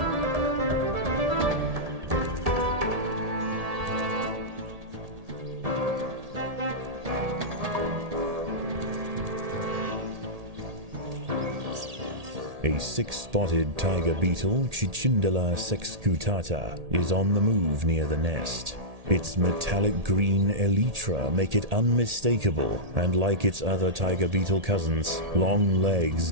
A six-spotted tiger beetle, Cicindela sexcutata, is on the move near the nest. Its metallic green elytra make it unmistakable, and like its other tiger beetle cousins, long legs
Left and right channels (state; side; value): late; left; 1.8 ms